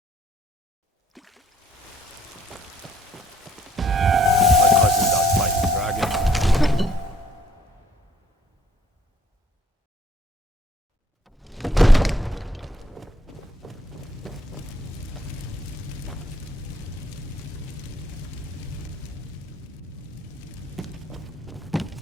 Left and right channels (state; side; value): normal; both; correlation 0.64